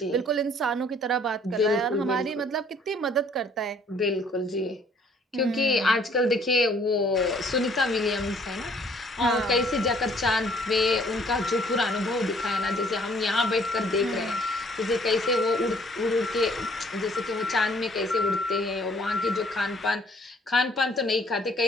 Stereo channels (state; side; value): normal; both; correlation 0.60